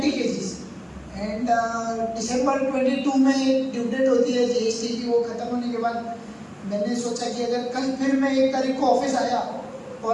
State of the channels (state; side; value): identical; both; correlation 1.00